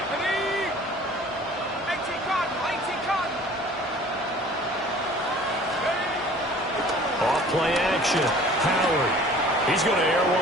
Play action. Howard. He's going to air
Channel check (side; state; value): both; normal; correlation 0.49